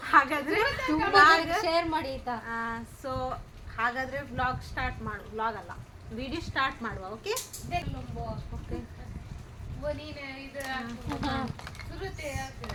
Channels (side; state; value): both; identical; correlation 1.00